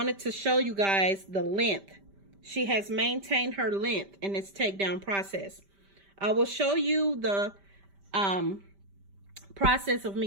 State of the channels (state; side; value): late; left; 5.1 ms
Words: to show you guys the length. She has maintained her length in this takedown process. I will show you the process of